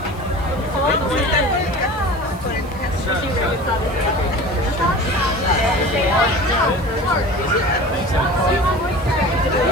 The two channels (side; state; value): right; noise; hiss, 24 dB below the sound